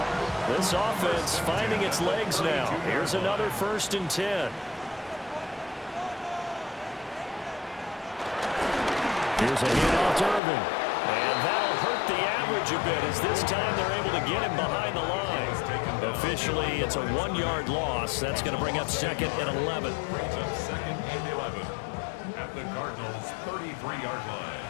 This offense finding its legs now. Here's another 1st and 10. Here's a handoff to Irvin. And that'll hurt the average a bit as this time they're able to get him behind the line. Officially, it's a 1-yard loss. That's going to bring up 2nd and 11. Brings up 2nd and 11 at the Cardinals' 33-yard line.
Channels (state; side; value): drops out; right; at 10.4 s